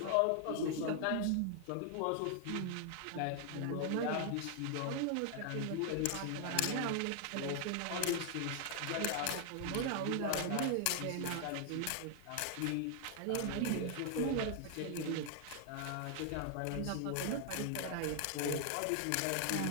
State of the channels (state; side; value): different; both; correlation 0.00